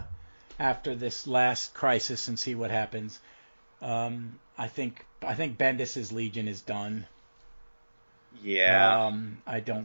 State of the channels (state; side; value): inverted; both; correlation -1.00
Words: after this last crisis and see what happens. I think Bendis's Legion is done. Yeah. I